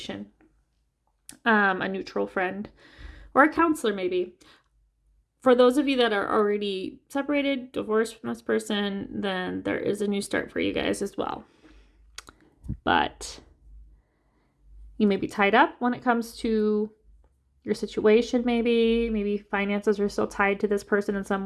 a neutral friend, or a counselor maybe. For those of you that are already separated, divorced from this person, then there is a new start for you guys as well. But you may be tied up when it comes to your situation, maybe finances are still tied to this person in some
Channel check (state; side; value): identical; both; correlation 1.00